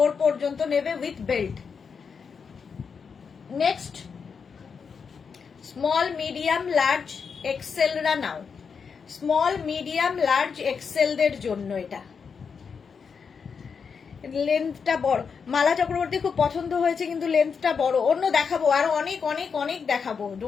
পর্যন্ত নেবে with belt. Next small, medium, large, এক্সেলরা নাও, স্মল, মিডিয়াম, লার্জ, এক্সেলদের জন্য এটা। লেন্থটা বড়, মালা চক্রবর্তী খুব পছন্দ হয়েছে, কিন্তু লেন্থটা বড়। অন্য দেখাবো, আরো অনেক অনেক অনেক দেখাবো,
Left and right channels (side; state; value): right; quieter; 6.0 dB